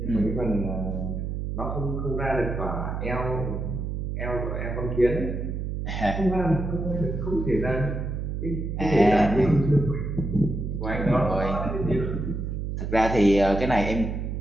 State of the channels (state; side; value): noise; right; hum, 3 dB below the sound